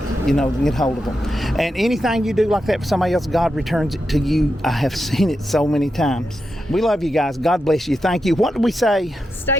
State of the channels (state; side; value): normal; both; correlation 0.87